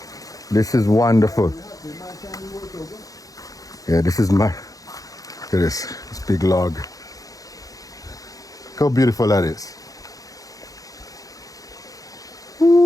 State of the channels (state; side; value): late; right; 0.17 ms